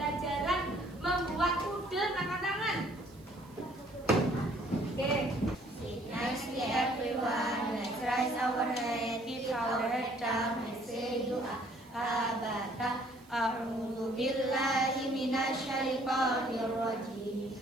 membuat udel? Angkat tangan. Oke. Nicely everyone, let's raise our hand, keep our head down and say doa. Abada, a'udzu billahi minasyaitonir rajim.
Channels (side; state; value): right; noise; hiss, 28 dB below the sound